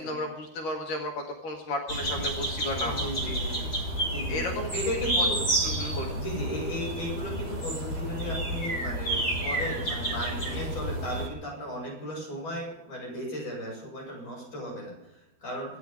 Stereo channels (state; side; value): late; right; 12 ms